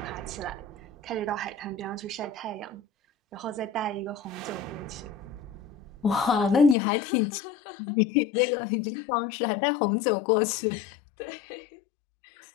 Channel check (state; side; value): drops out; right; at 6.8 s